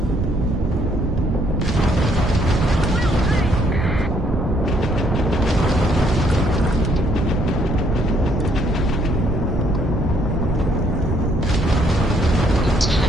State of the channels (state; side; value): noise; right; rumble, 3 dB below the sound